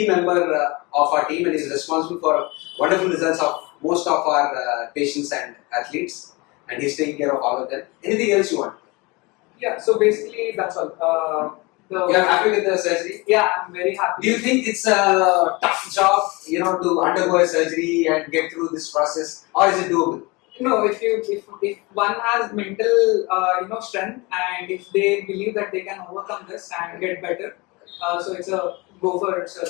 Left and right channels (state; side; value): quieter; right; 25.3 dB